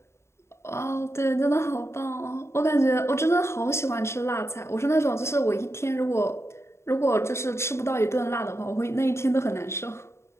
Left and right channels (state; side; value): late; right; 0.13 ms